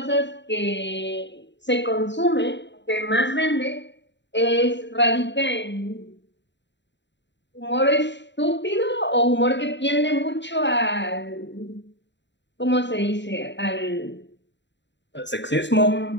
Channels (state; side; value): late; right; 0.52 ms